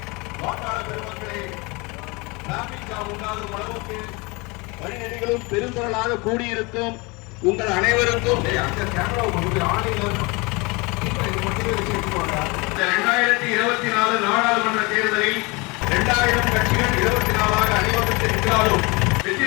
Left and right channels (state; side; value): quieter; right; 26.6 dB